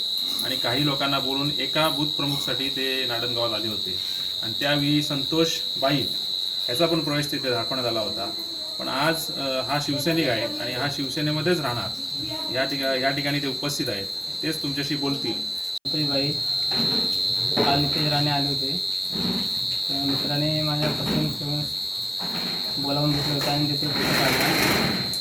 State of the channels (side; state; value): both; identical; correlation 1.00